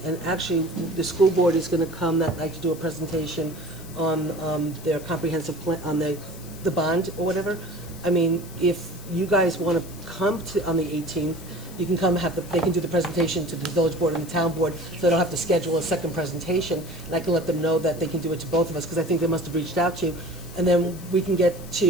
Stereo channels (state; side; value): noise; left; hiss, 18 dB below the sound